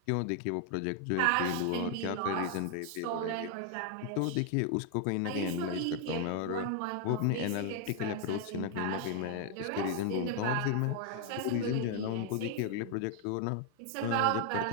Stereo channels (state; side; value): different; both; correlation 0.00